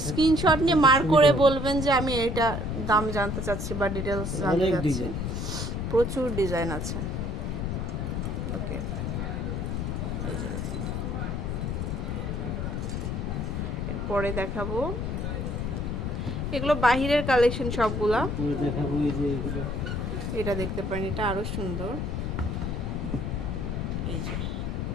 স্ক্রিনশট নিয়ে দেখতে মার্ক করে সুবিধা হবে। বলবেন যে আমি এটা দাম জানতে চাচ্ছি বা ডিটেলস জানতে অনেক চাচ্ছি। ডিজাইন, প্রচুর ডিজাইন আছে। ওকে, এরপরে দেখাবো এগুলো বাহিরের কালেকশন সবগুলা। উপরে দেখাবো এই যে এগুলো। এটা দেখতে পারেন, এটা আরো সুন্দর। এই যে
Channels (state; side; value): noise; left; rumble, 2 dB below the sound